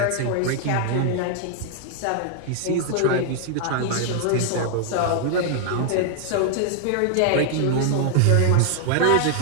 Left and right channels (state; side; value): different; both; correlation 0.00